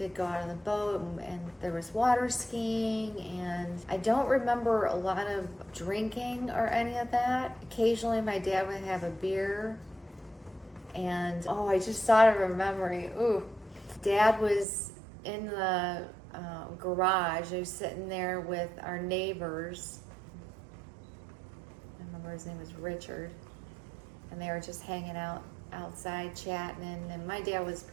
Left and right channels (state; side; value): drops out; left; at 14.7 s